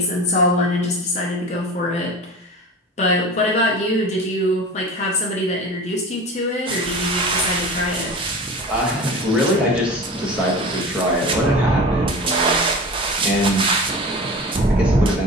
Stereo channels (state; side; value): normal; both; correlation 0.34